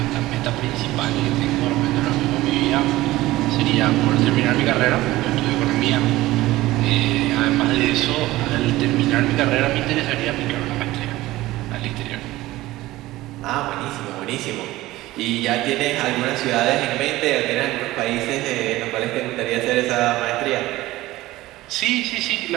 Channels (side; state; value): left; quieter; 17.4 dB